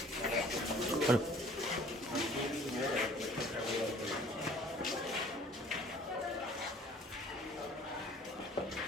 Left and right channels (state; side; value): normal; both; correlation 0.52